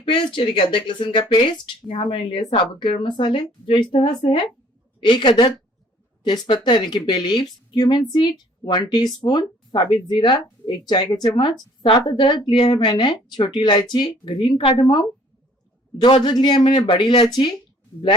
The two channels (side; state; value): both; normal; correlation 0.58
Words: पेस्ट यानी कि अदरक लहसुन का पेस्ट। यहाँ मैंने लिया साबुत गरम मसाले जो इस तरह से है। 1 अदद तेजपत्ता यानी कि bay leaves, cumin seed 1 teaspoon, साबित जीरा 1 चाय का चम्मच, 7 अदरक लिया है मैंने छोटी इलायची, ग्रीन कार्डमम 2 अदरक लिया है मैंने बड़ी इलायची,